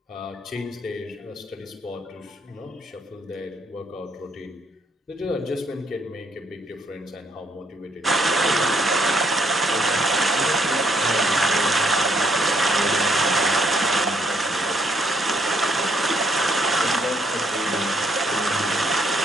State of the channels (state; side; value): normal; both; correlation 0.71